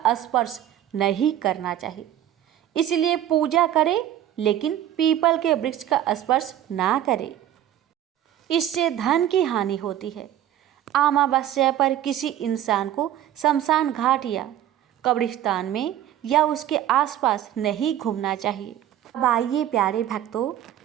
स्पर्श नहीं करना चाहिए। इसलिए पूजा करें लेकिन पीपल के वृक्ष का स्पर्श ना करें, इससे धन की हानि होती है। अमावस्या पर किसी इंसान को शमशान घाट या कब्रिस्तान में या उसके आसपास नहीं घूमना चाहिए। अब आइए प्यारे भक्तों,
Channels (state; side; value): quieter; left; 11.6 dB